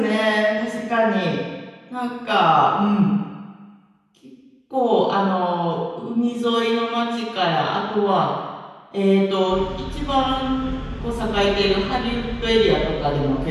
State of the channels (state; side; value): identical; both; correlation 1.00